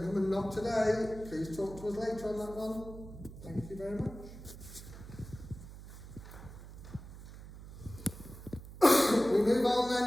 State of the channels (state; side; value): noise; right; hum, 14 dB below the sound